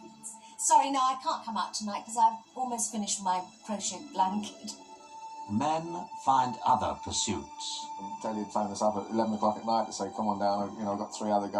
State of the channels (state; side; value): identical; both; correlation 1.00